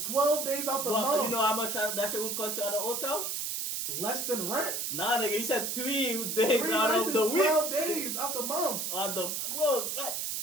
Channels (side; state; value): right; noise; hiss, 2 dB below the sound